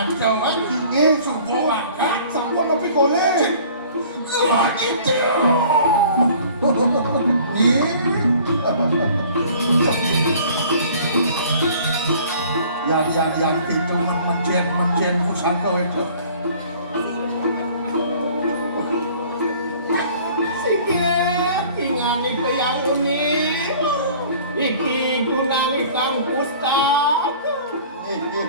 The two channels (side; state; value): both; inverted; correlation -0.50